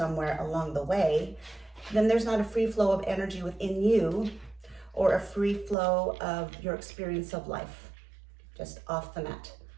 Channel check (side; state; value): left; drops out; at 5.8 s